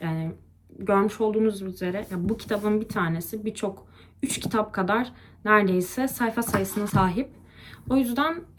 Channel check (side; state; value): both; identical; correlation 1.00